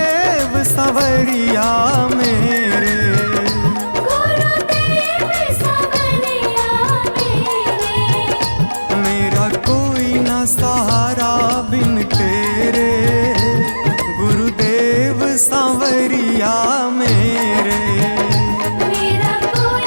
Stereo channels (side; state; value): both; inverted; correlation -1.00